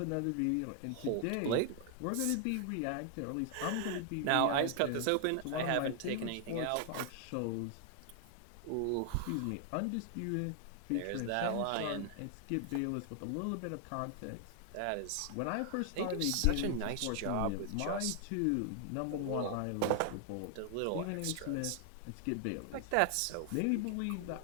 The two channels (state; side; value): different; both; correlation 0.00